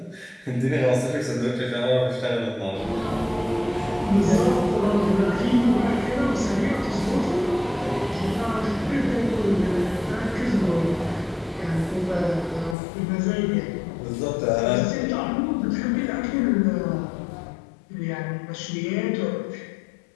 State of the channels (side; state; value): right; drops out; at 12.8 s